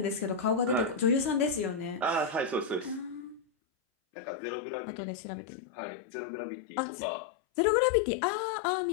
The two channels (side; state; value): right; drops out; at 3.4 s